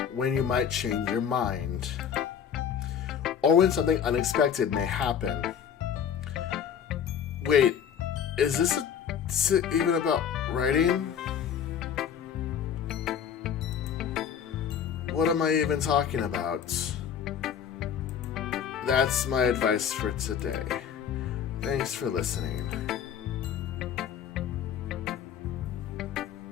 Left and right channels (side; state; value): right; quieter; 8.3 dB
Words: when you might change your mind, or when something unexpected may happen. Wait, is this even about writing? What am I even talking about? That's my advice for today. Thanks for listening.